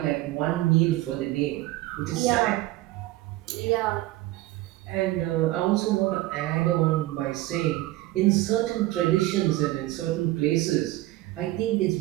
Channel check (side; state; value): left; quieter; 17.3 dB